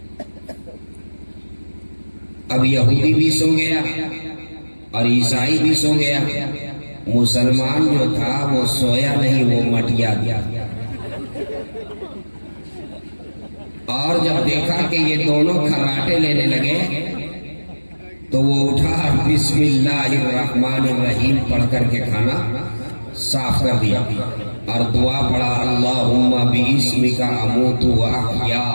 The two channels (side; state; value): both; inverted; correlation -1.00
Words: اب یہودی بھی سو گیا اور عیسائی بھی سو گیا، مسلمان جو تھا وہ سویا نہیں، وہ مٹیا گیا. اور جب دیکھا کہ یہ دونوں کھراٹے لینے لگے تو وہ اٹھا، بسم اللہ الرحمن الرحیم پڑھ کر کے کھانا صاف کر دیا اور دعا پڑھا، اللہم باسمک اموت و احیا،